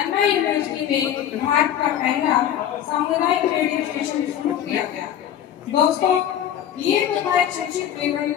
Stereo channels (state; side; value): quieter; right; 10.3 dB